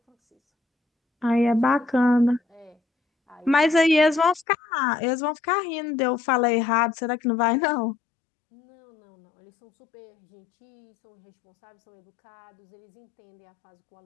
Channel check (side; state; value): right; drops out; at 4.5 s